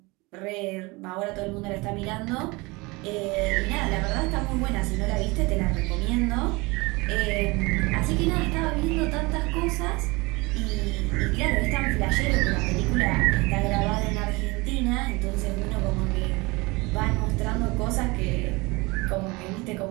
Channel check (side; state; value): left; quieter; 24.6 dB